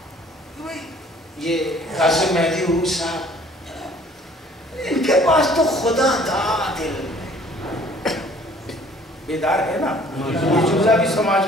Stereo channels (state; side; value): normal; both; correlation 0.55